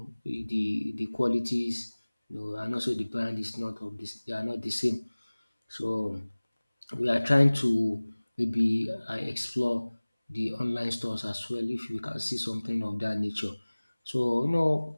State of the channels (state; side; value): inverted; both; correlation -1.00